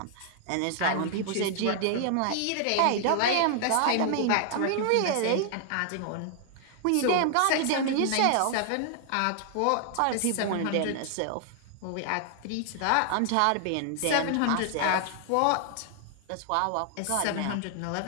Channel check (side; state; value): both; different; correlation 0.00